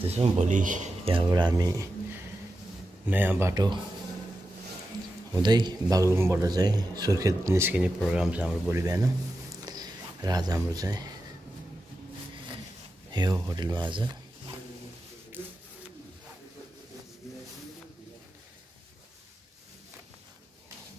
भोलि यहाँबाट हामी नयाँ बाटो हुँदै बागलुङबाट चाहिँ सुर्खेत निस्किने प्रोग्राम छ हाम्रो भोलि बिहान। र आज हाम्रो चाहिँ यो होटलमा आज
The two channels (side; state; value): both; normal; correlation 0.90